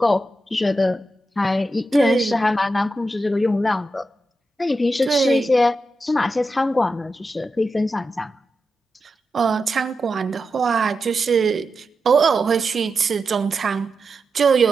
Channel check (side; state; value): both; normal; correlation 0.89